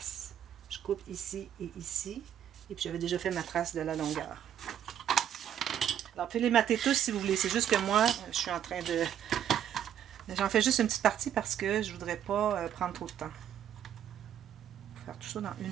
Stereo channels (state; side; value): quieter; left; 9.9 dB